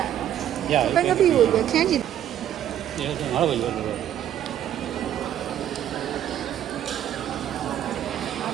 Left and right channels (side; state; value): left; quieter; 10.9 dB